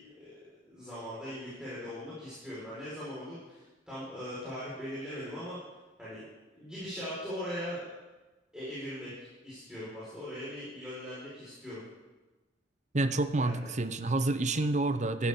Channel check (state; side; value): normal; both; correlation 0.58